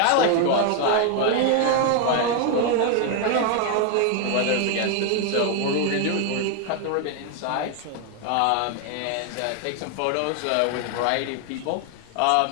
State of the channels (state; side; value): different; both; correlation 0.00